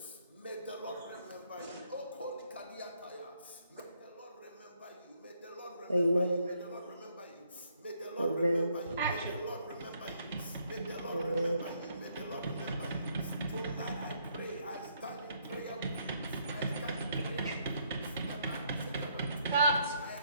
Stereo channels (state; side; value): inverted; both; correlation -0.71